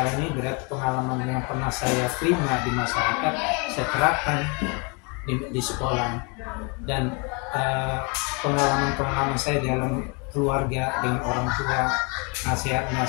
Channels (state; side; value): quieter; right; 32.6 dB